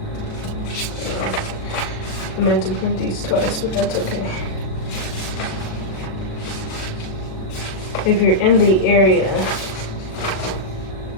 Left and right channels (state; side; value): late; right; 37 ms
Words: I meant to print these twice, but that's okay. If you're in the area,